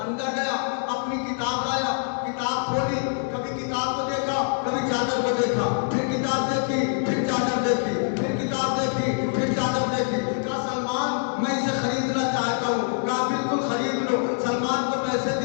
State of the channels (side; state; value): right; silent; digital silence